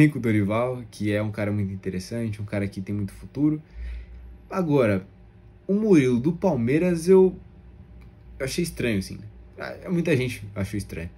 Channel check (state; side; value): identical; both; correlation 1.00